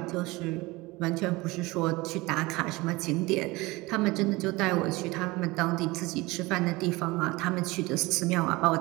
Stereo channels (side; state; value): left; quieter; 22.1 dB